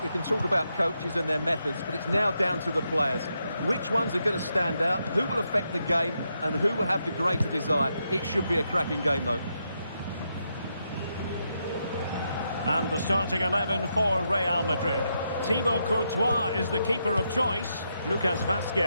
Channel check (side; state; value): both; inverted; correlation -0.82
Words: we can talk about coaches and their methods, but it's now down to the players. Which ones are going to stand out, who will affect the game, and who will have the greater desire? It should be a cracking game, though. And the starting 11 for Real Madrid. Thibaut Courtois is the keeper of choice. Lucas